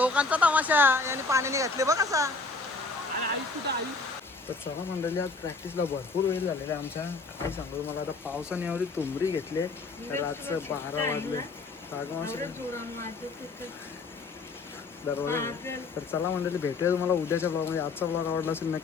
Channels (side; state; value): right; quieter; 3.9 dB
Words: तमाशा यांनी पाण्याने घातले बघ असा. तर चला मंडळी आज प्रॅक्टिसला भरपूर वेळ झालेला आहे आमच्या. काय सांगू मला आता पावसाने एवढी तुंबरी घेतले रातचं 12 वाजले दरवाजा. तर चला मंडळी भेटूया तुम्हाला उद्याच्या ब्लॉगमध्ये. आजचा ब्लॉग आवडला असेल